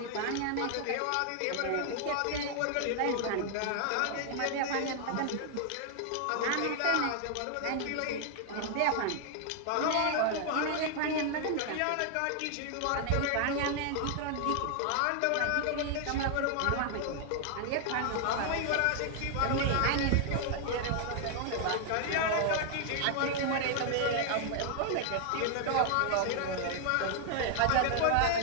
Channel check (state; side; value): different; both; correlation 0.00